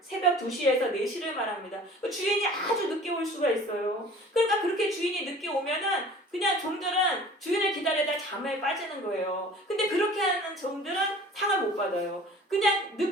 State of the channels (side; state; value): both; normal; correlation 0.45